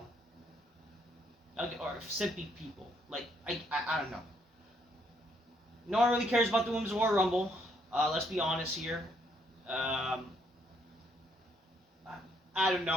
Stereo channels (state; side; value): normal; both; correlation 0.71